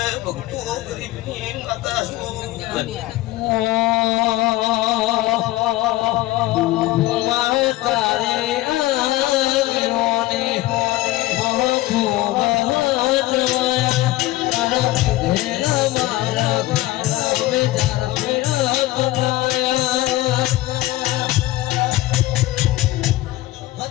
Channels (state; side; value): quieter; right; 17.5 dB